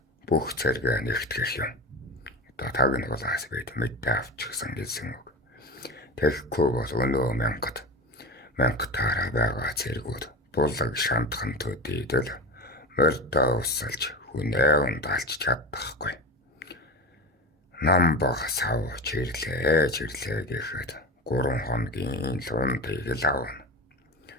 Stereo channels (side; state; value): both; normal; correlation 0.26